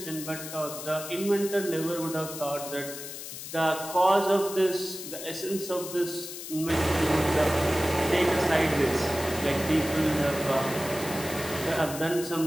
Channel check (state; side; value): noise; left; hiss, 10 dB below the sound